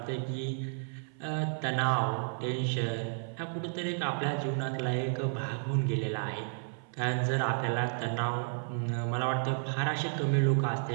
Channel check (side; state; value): left; silent; 56 dB below the other